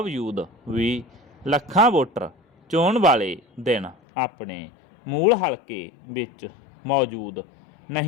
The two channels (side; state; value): right; drops out; at 4.0 s